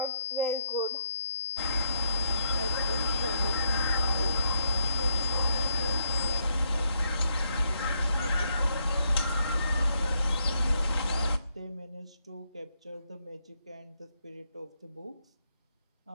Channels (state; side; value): inverted; both; correlation -0.77